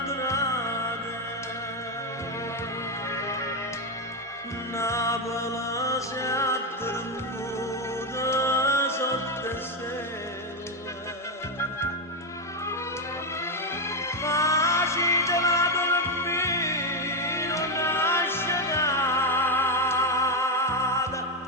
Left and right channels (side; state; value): both; normal; correlation 0.07